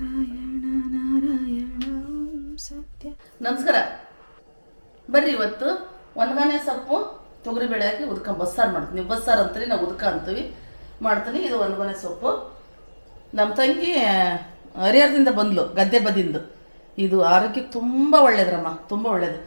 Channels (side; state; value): both; inverted; correlation -1.00